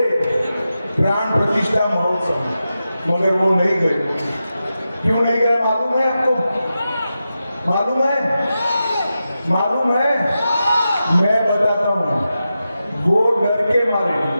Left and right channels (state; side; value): inverted; both; correlation -0.91